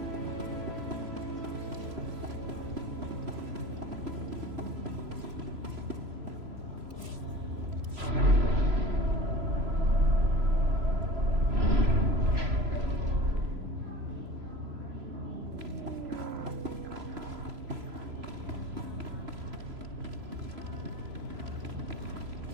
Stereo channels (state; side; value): late; left; 3.0 ms